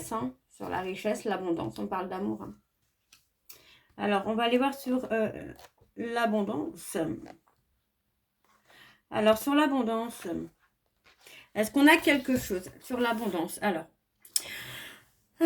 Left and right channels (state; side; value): identical; both; correlation 1.00